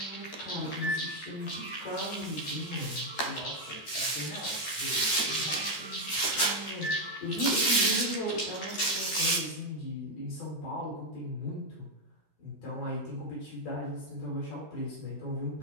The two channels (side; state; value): right; late; 13 ms